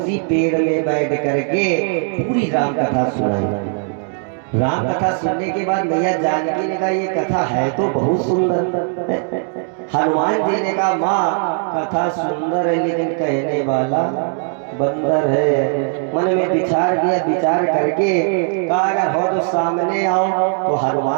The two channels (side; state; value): left; silent; 57 dB below the other